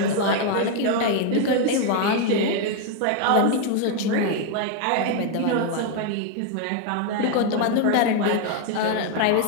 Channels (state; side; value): different; both; correlation 0.01